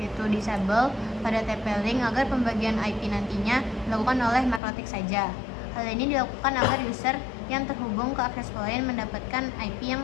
yaitu disable pada TP-Link agar pembagian IP nantinya dilakukan oleh MikroTik saja. Hal ini dilakukan agar user yang terhubung ke access point mendapatkan IP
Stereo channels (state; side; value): drops out; right; at 4.6 s